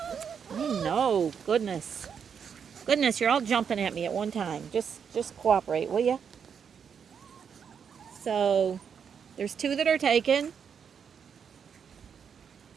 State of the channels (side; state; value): left; quieter; 7.1 dB